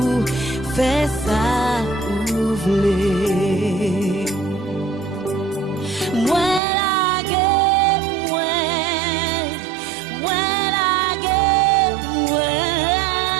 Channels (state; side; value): drops out; left; at 6.6 s